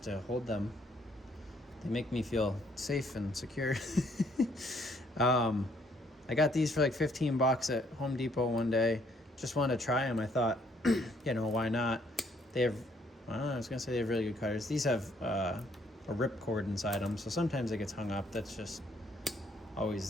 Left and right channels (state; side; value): normal; both; correlation 0.67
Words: to hold them. They make me feel safe and secure. I got these for like $15 at Home Depot one day. Just wanted to try them. I thought, why not? They have, I was going to say they have really good cutters. These have a rip cord inside them, so sometimes it gets hung up. That's just